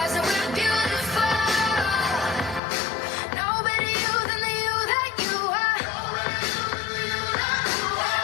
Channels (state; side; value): drops out; right; at 2.6 s